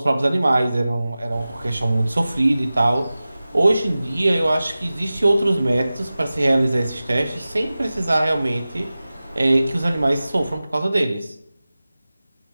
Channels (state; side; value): inverted; both; correlation -0.96